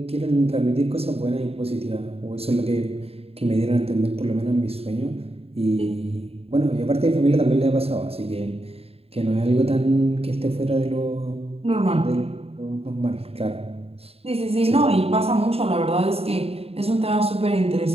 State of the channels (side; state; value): left; late; 0.29 ms